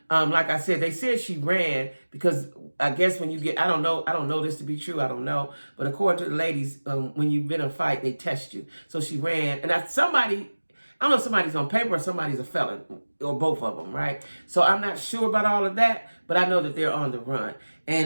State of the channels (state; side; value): inverted; both; correlation -1.00